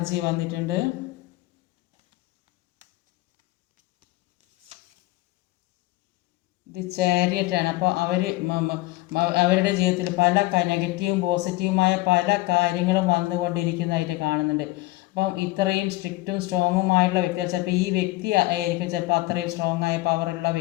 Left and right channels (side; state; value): right; quieter; 19.1 dB